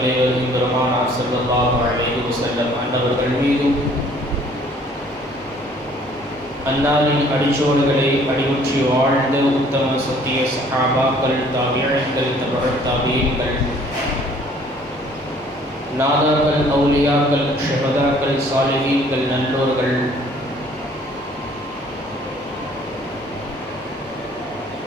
பெருமானார் ஸல்லல்லாஹு அலைஹி வஸல்லம் அன்னவர்கள் மீதும், அன்னாரின் அடிச்சோடுகளை அடிமுற்றி வாழ்ந்த உத்தம சத்திய சஹாபாக்கள், தாபிஈன்கள், தபஅத் தாபிஈன்கள், நாதாக்கள், அவுலியாக்கள், ஷஹதாக்கள், சாலிஹீன்கள், நல்லோர்கள்,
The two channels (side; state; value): both; normal; correlation 0.57